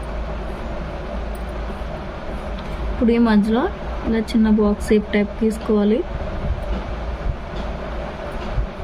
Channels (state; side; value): identical; both; correlation 1.00